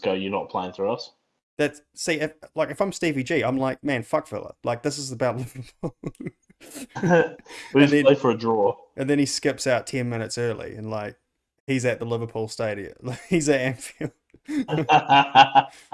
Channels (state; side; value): identical; both; correlation 1.00